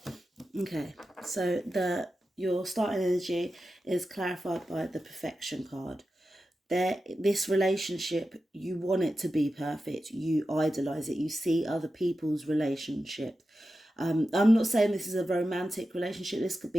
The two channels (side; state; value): both; normal; correlation 0.92